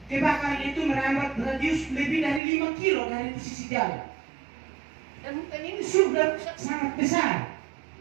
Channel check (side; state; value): left; drops out; at 2.4 s